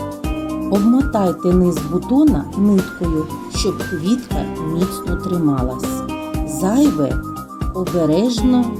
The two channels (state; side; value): identical; both; correlation 1.00